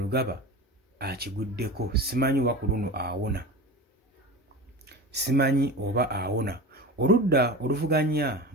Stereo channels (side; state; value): both; normal; correlation 0.29